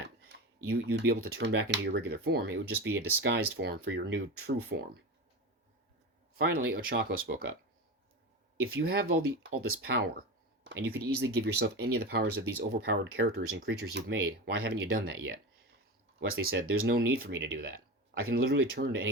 You'd be able to turn back into your regular form. It would just be a disguised form for your new true form. Finally, Ochako spoke up. If you have all this power, and you could easily give yourself any of the powers of these overpowered characters and creatures you've made, why haven't you done that yet? Wesley said, there's no need for me to do that. I can literally turn to any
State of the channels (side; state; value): both; normal; correlation 0.24